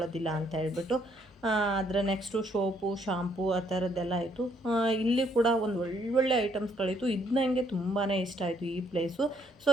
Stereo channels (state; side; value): normal; both; correlation 0.69